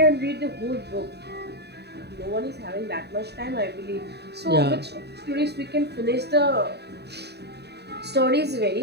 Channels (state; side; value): late; left; 0.48 ms